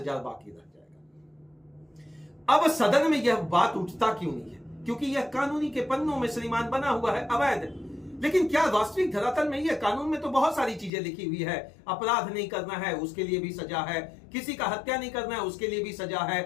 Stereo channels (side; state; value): right; drops out; at 10.9 s